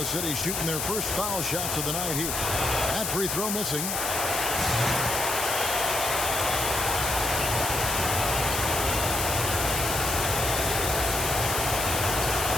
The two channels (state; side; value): noise; left; hiss, 1 dB below the sound